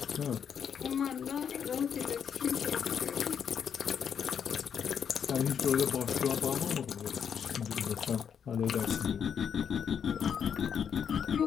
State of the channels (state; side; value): quieter; right; 7.7 dB